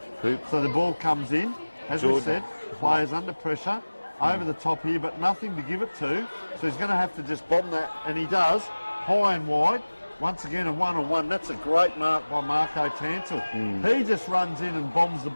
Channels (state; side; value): inverted; both; correlation -1.00